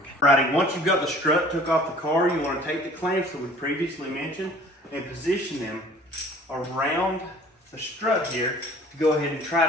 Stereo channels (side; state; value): both; normal; correlation 0.50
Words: Alrighty, once you've got the strut took off the car, you want to take the clamps that we previously mentioned and position them around the strut here to go ahead and